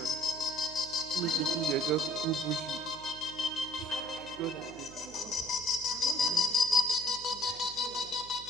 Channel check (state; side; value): noise; right; hum, 20 dB below the sound